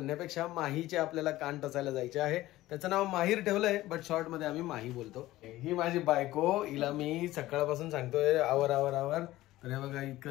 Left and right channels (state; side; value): quieter; right; 16.5 dB